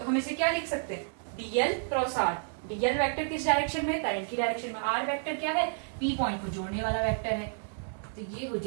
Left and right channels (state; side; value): silent; left; digital silence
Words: हम इसे क्या लिख सकते हैं, DL cross R. DL vector किस डायरेक्शन में, करंट की डायरेक्शन में, आर वेक्टर क्या है, पी पॉइंट को जोड़ने वाला वेक्टर है, तो ये हो